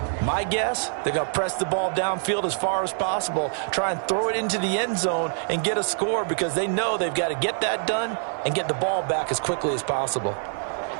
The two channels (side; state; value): left; silent; 57 dB below the other